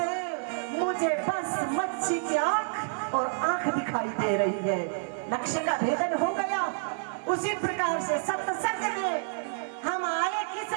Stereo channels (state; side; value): silent; left; digital silence